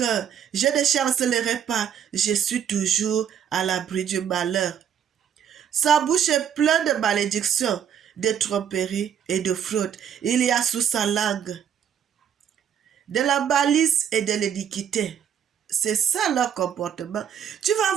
je ne chancellerai pas, je suis toujours à l'abri du malheur. Sa bouche est pleine de malédictions, de tromperies et de fraude. Il y a sous sa langue de la malice et de l'iniquité. C'est ça leur comportement. Tu vas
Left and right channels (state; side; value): quieter; left; 8.6 dB